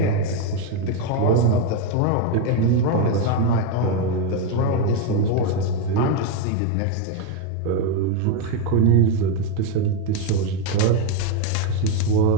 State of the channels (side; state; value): both; different; correlation 0.02